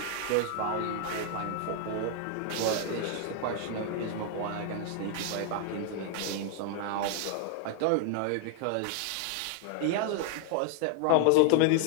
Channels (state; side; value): different; both; correlation 0.00